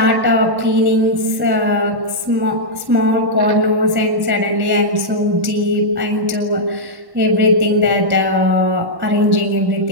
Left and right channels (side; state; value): left; late; 1.1 ms